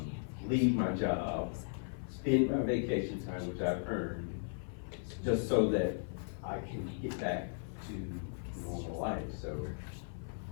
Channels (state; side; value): silent; right; 53 dB below the other